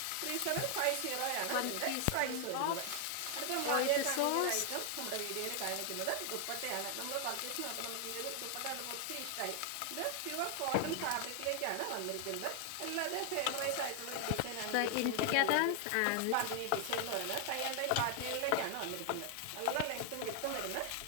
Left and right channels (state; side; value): different; both; correlation 0.00